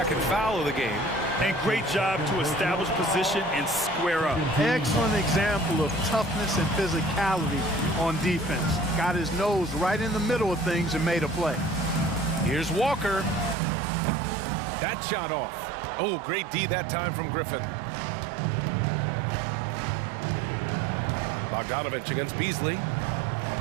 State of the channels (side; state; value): left; drops out; at 13.6 s